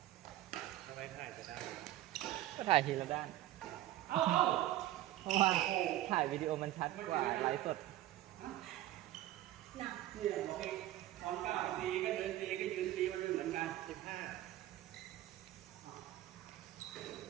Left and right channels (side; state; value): left; quieter; 14.6 dB